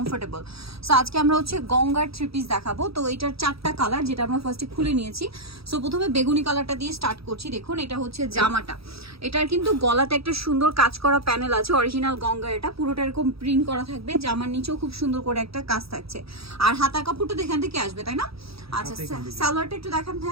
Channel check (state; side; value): late; left; 0.77 ms